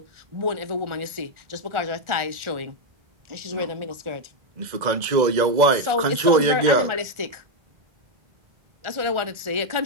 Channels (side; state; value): left; late; 1.4 ms